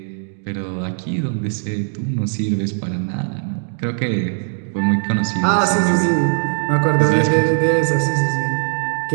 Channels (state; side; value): silent; left; digital silence